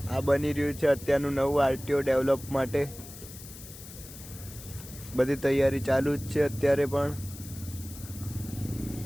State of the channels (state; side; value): noise; left; hiss, 15 dB below the sound